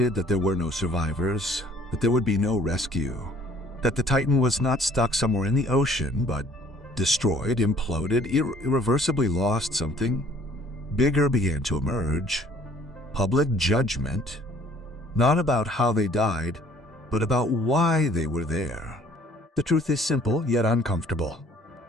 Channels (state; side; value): normal; both; correlation 0.57